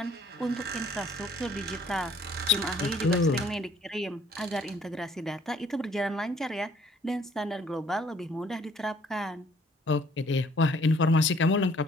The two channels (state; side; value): normal; both; correlation 0.60